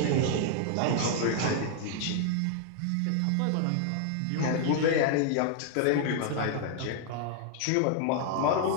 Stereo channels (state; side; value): different; both; correlation 0.00